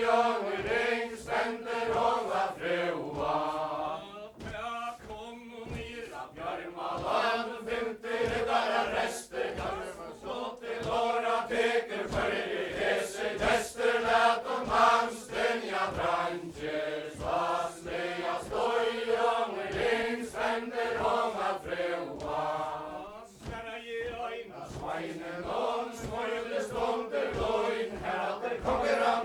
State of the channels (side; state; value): both; identical; correlation 1.00